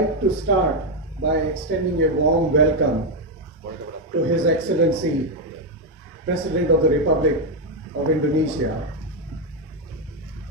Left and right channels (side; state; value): both; normal; correlation 0.03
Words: to start by extending a warm welcome to His Excellency, President of the Republic, of Indonesia,